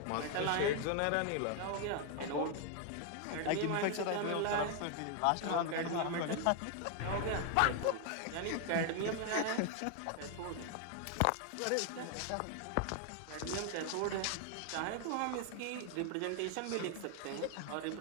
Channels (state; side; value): different; both; correlation 0.01